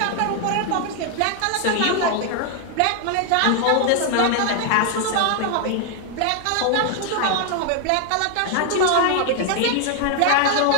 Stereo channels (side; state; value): both; different; correlation 0.00